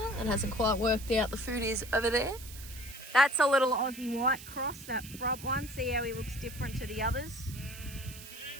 that hasn't quite worked out. The food is over there. That's a little Aussie white cross, that front one. See how he looks different to the others?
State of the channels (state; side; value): noise; right; hiss, 15 dB below the sound